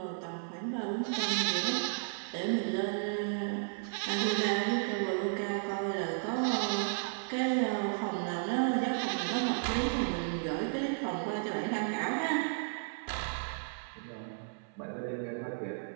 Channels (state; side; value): silent; left; 55 dB below the other